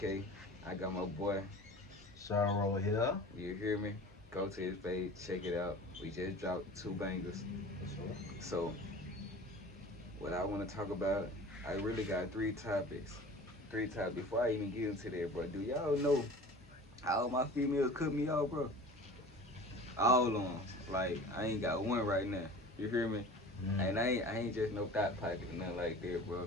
I got my boy. Sharo here. You hear me? Go to his page, check it out. We just dropped two bangers. For sure. So, what I want to talk about, I really got three topics. Three topics. Before I even get into that, bro, do y'all know how my females cut me off, bro? All of them. Like, I ain't got one right now. You hear me? And I ain't just no thought pocket or nothing like that, bro.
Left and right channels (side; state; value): both; normal; correlation 0.40